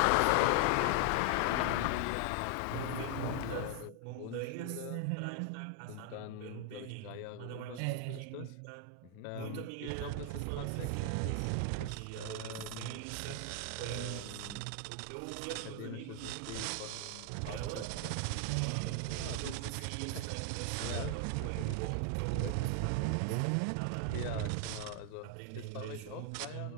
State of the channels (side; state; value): both; different; correlation 0.00